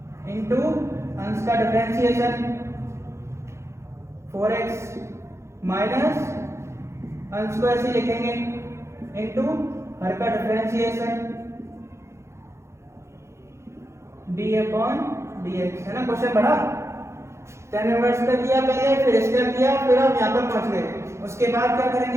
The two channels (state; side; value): late; left; 0.13 ms